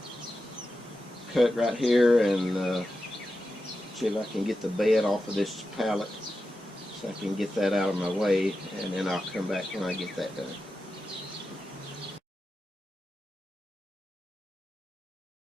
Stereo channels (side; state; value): both; normal; correlation 0.91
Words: cut right here and see if I can get the bed off of this pallet so I can get that out of my way, and then I'll come back when I get that done.